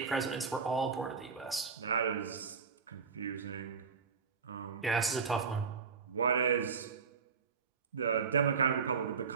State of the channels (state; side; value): quieter; left; 5.6 dB